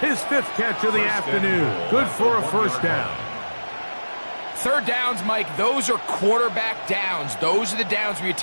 His 5th catch of the afternoon. Good for a first down. Third downs, Mike, those are quarterback downs. Those are the downs where you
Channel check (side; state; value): both; inverted; correlation -1.00